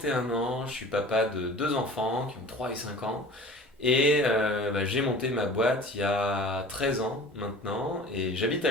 ans, je suis papa de deux enfants qui ont 3 et 5 ans. Et j'ai monté ma boîte il y a 13 ans maintenant et j'habite à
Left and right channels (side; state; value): both; normal; correlation 0.42